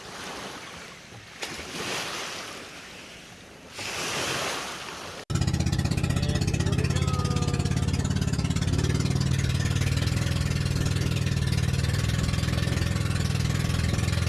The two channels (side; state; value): both; identical; correlation 1.00